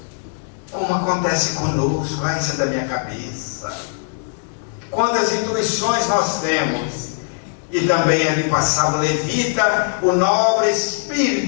Como acontece conosco, isso é da minha cabeça. Quantas intuições nós temos. E também ali passava o levita, o nobre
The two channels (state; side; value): silent; right; digital silence